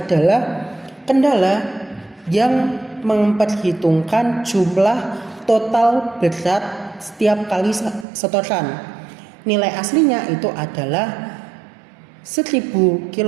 kendala yang memperhitungkan jumlah total berat setiap kali setoran. Nilai aslinya itu adalah 1000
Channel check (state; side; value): drops out; left; at 8.1 s